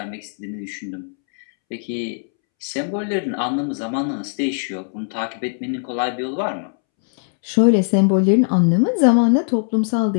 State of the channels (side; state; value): right; silent; 66 dB below the other